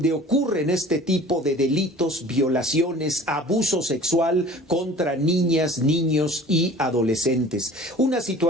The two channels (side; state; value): both; normal; correlation 0.45